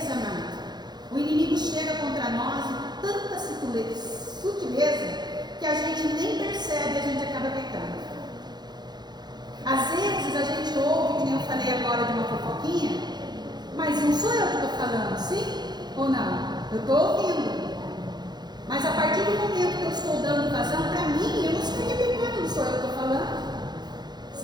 amado, o inimigo chega contra nós com tanta sutileza que a gente nem percebe e a gente acaba pecando. Às vezes a gente ouve, que nem eu falei agora de uma fofoquinha, mas não sou eu que estou falando, sim ou não? Eu estou ouvindo. Mas a partir do momento que eu estou dando vazão, para mim, eu não estaria pecando, não sou eu que estou falando.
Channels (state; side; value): late; left; 0.21 ms